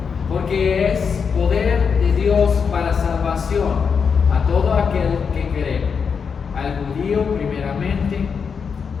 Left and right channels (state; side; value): quieter; right; 6.1 dB